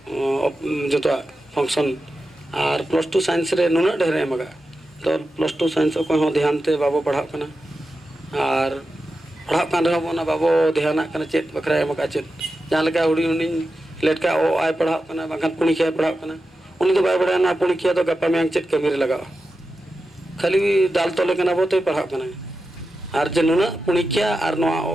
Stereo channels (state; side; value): normal; both; correlation 0.91